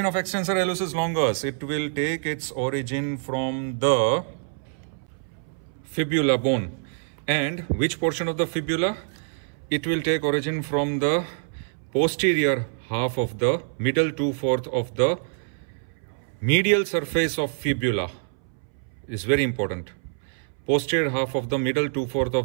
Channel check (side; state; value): left; silent; 61 dB below the other